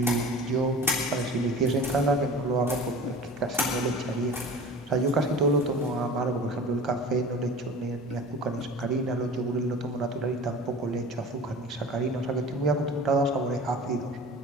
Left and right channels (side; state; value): both; normal; correlation 0.39